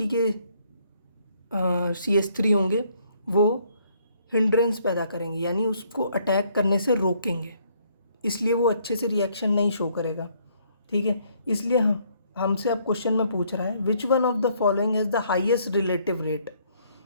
के CH3 होंगे वो हिंड्रेंस पैदा करेंगे, यानी उसको अटैक करने से रोकेंगे, इसलिए वो अच्छे से रिएक्शन नहीं शो करेगा, ठीक है। इसलिए हमसे अब क्वेश्चन में पूछ रहा है which one of the following has the highest relative rate,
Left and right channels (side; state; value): both; inverted; correlation -0.66